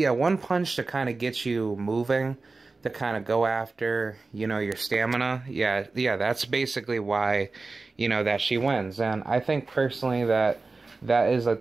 punch to kind of get you moving, to kind of go after, you know, your stamina. Yeah, that's basically why, you know, that she wins. And I think personally that is like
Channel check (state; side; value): quieter; left; 3.8 dB